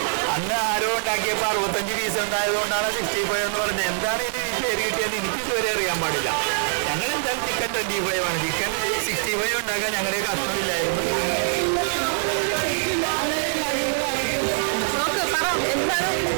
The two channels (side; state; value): left; silent; 56 dB below the other